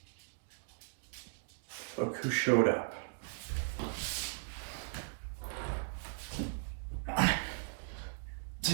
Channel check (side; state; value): left; silent; digital silence